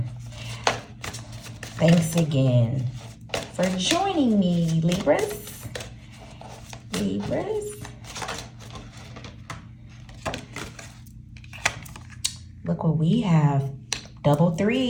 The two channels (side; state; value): both; identical; correlation 1.00